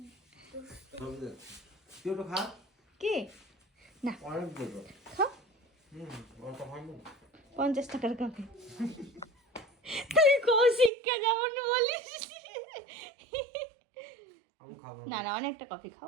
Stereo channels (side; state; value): left; drops out; at 10.9 s